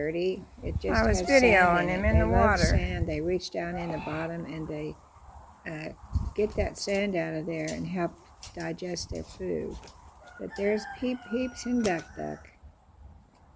It just I was has videoing sand in him it. in the They love water. sand. They reach down in the bottom and they get that sand out of there and help digest their food. But there's Peeps and Duck.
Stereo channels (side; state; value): both; identical; correlation 1.00